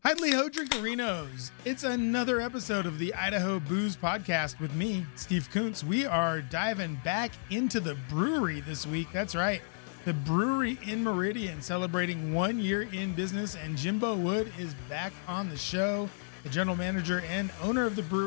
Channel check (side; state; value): right; silent; digital silence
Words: Hidely Ho Drinkerinos. It's another episode of the Idaho Booze Podcast with me, Steve Kuntz. We are diving back into the brewery this week. That's right. The Bruery in Meridian celebrating 1 year in business, and Jimbo Wood is back on the show, the general manager and owner of the